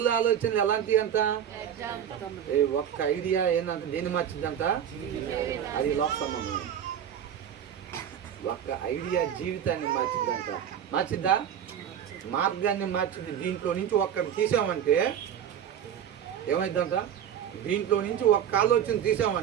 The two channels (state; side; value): quieter; left; 9.3 dB